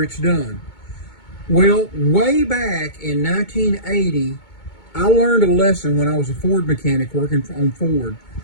it's done. Well, way back in 1980, I learned a lesson when I was a Ford mechanic working on Ford.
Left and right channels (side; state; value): right; late; 2.2 ms